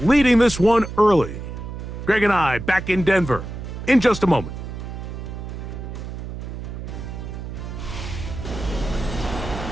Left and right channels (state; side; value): noise; right; hum, 8 dB below the sound